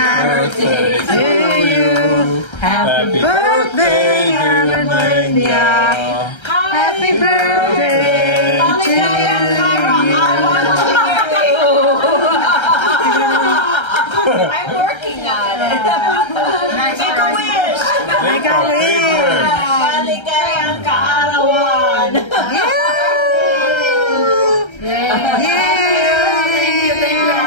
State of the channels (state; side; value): late; right; 1.3 ms